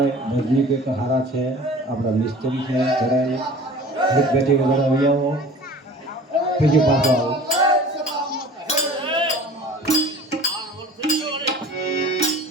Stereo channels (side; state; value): both; normal; correlation 0.44